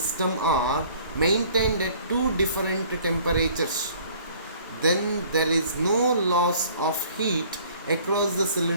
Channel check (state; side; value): inverted; both; correlation -0.54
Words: are maintained at two different temperatures. Then there is no loss of heat across the